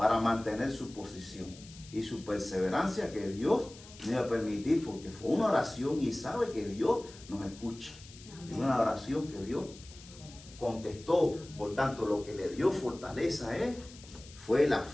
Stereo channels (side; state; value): left; noise; hiss, 19 dB below the sound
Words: mantener su posición y su perseverancia, que Dios no iba a permitir, porque fue una oración y sabe que Dios nos escucha. Es una oración que Dios contestó. Por tanto, lo que le dio fortaleza a él fue la